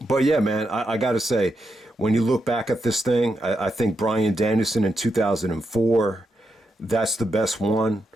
But yeah, man, I got to say, when you look back at this thing, I think Bryan Danielson in 2004, that's the best one.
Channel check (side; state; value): both; normal; correlation 0.84